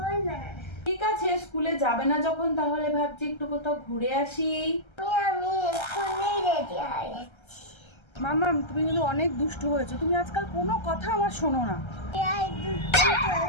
না, ঠিক আছে, স্কুলে যাবে না যখন, তাহলে ভাবছি একটু কোথাও ঘুরে আসি। আমি এক্ষুনি রেডি হয়ে যাচ্ছি। মাম্মা তুমি কিন্তু অনেক দুষ্টু হয়েছো, তুমি আজকাল কোনো কথা আমার শোনো না। এই দুধটা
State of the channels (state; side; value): late; right; 1.3 ms